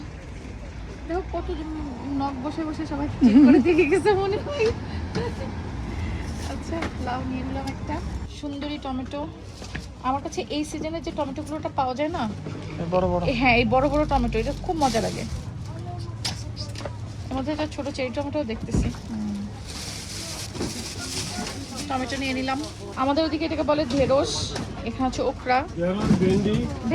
দেখো কত নখ বসে বসে সবাই চেক করে দিয়ে গেছে মনে হয়। আচ্ছা, লাউ নিয়ে নিলাম একটা। সুন্দরী টমেটো। আমার কাছে এই সিজনে যে টমেটোগুলোটা পাওয়া যায় না, বড় বড়। হ্যাঁ, এই বড় বড় টমেটো, এটা খুব মজা লাগে। এর মধ্যে একটা ছোট চেরি টমেটো দেখতেছি। টমেটো নিয়ে নিলাম। আমাদের ওদিকে এটাকে বলে ঢেঁড়স, এখানে হচ্ছে ওকরা, ভেন্ডি।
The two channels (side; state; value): both; identical; correlation 1.00